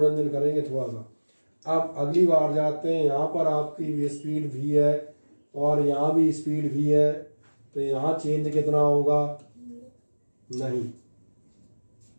करेंगे थोड़ा सा। अब अगली बार जाते हैं, यहाँ पर आपकी स्पीड v है और यहाँ भी स्पीड v है, तो यहाँ चेंज कितना होगा, नहीं,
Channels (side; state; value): both; inverted; correlation -1.00